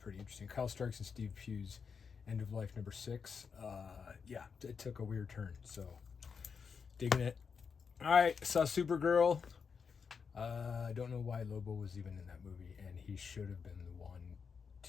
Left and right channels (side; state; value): right; quieter; 6.0 dB